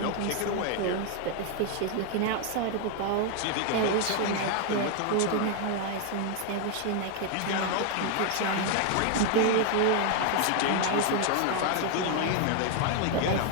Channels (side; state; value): both; different; correlation 0.01